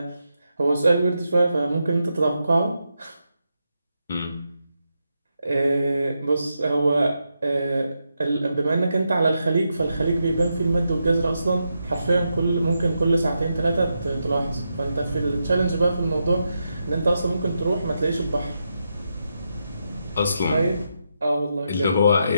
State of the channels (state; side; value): inverted; both; correlation -0.85